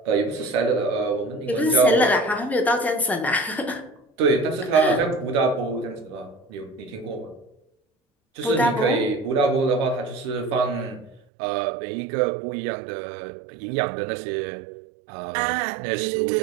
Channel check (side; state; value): left; drops out; at 11.2 s